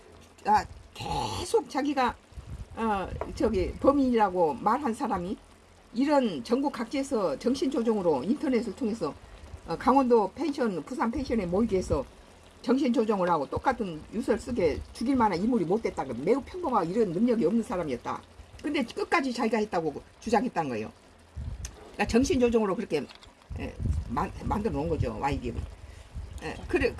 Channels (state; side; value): identical; both; correlation 1.00